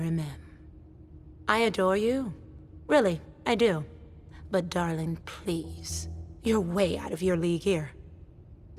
I adore you. Really, I do. But darling, please. You're way out of your league here.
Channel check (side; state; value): both; identical; correlation 1.00